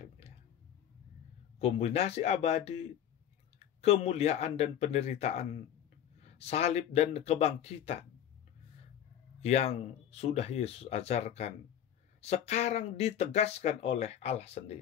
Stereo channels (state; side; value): quieter; right; 10.2 dB